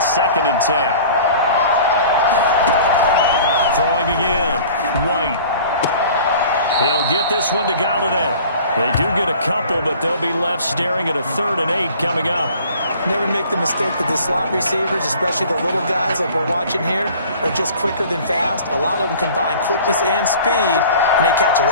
second and 10. Throwing again. White. He'll get this one to Galladay. They do get a couple, but they'll be left staring at a 3rd and 8 coming up. Never make the mistake that the slot receivers, especially the little guys like we're watching here, are just quicker than fast. A lot of them combine quickness and speed, and they catch a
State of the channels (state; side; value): inverted; both; correlation -0.46